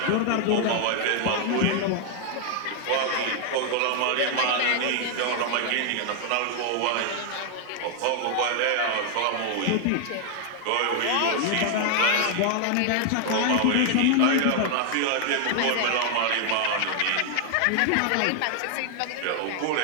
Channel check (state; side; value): different; both; correlation 0.00